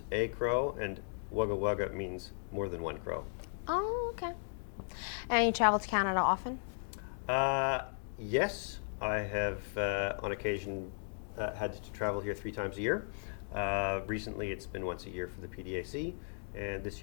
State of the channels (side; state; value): right; silent; digital silence